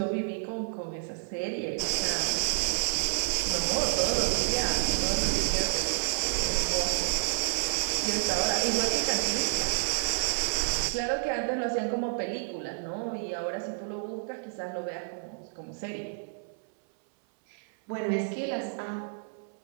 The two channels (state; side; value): silent; left; 58 dB below the other